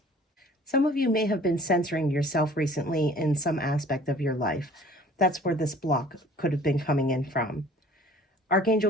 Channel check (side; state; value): both; normal; correlation 0.51